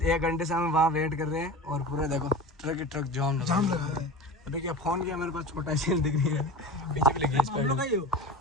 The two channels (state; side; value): normal; both; correlation 0.32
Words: 1 घंटे से हम वहाँ वेट कर रहे हैं और पूरा देखो ट्रक ही ट्रक जाम लगा है अभी क्या फोन किया मेरे पास छोटा सी दिख रही है पीछे भी लगी है